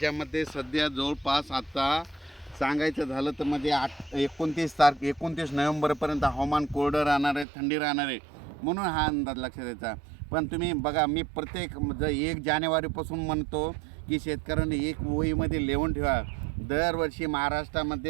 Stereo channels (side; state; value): left; drops out; at 7.5 s